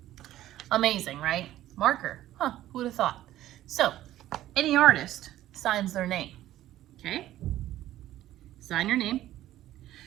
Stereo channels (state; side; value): quieter; left; 13.8 dB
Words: Amazing, right? Marker, huh, who would have thought? So, any artist signs their name, okay? Sign your name.